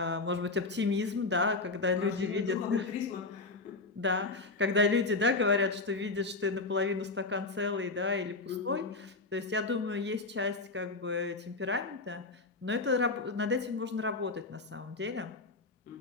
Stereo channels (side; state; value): right; quieter; 3.6 dB